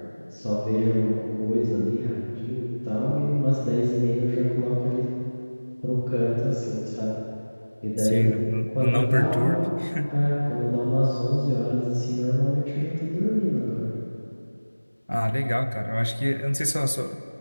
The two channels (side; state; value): both; inverted; correlation -1.00